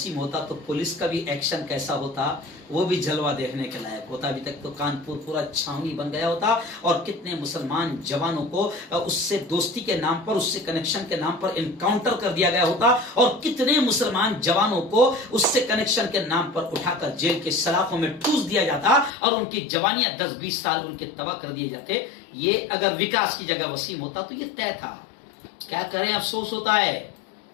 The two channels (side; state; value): right; drops out; at 19.1 s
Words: होता तो पुलिस का भी एक्शन कैसा होता, वो भी जलवा देखने के लायक होता। अभी तक तो कानपुर पूरा छावनी बन गया होता और कितने मुसलमान जवानों को उससे दोस्ती के नाम पर, उससे कनेक्शन के नाम पर इनकाउंटर कर दिया गया होता और कितने मुसलमान जवानों को उससे कनेक्शन के नाम पर उठाकर जेल के सलाखों में ठूस दिया जाता और उनकी जवानियां 10-20 साल उनके तबाह कर दिए जाते। ये अगर विकास की जगह वसीम होता तो ये तय था। क्या करें, अफसोस होता है।